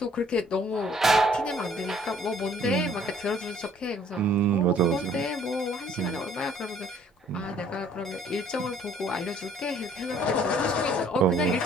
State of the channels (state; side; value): normal; both; correlation 0.59